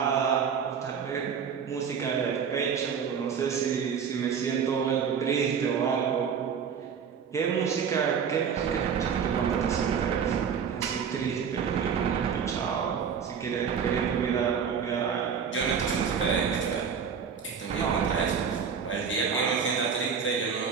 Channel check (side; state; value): left; quieter; 6.9 dB